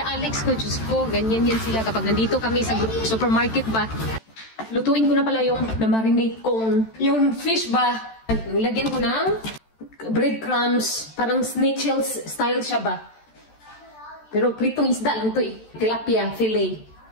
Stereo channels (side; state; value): right; late; 13 ms